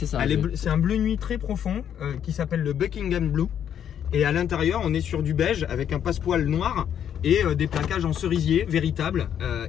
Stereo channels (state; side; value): quieter; right; 9.3 dB